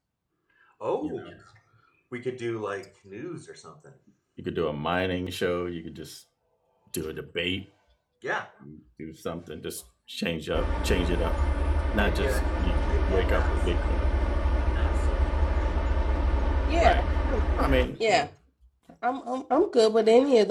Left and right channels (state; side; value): identical; both; correlation 1.00